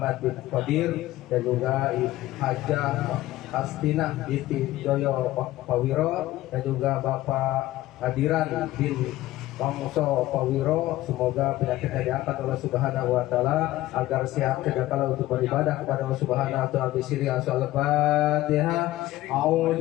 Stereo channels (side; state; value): right; quieter; 16.2 dB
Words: bin Qadir dan juga Hajah Astinah binti Joyo Pawiro dan juga Bapak Hadiran bin Pangso Pawiro, semoga penyakitnya diangkat oleh Subhanahu wa taala agar sehat kedakala untuk beribadah kepada Allah Subhanahu wa taala. Bisiri Al-Fatihah.